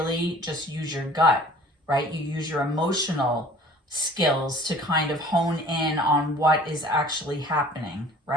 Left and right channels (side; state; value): both; normal; correlation 0.49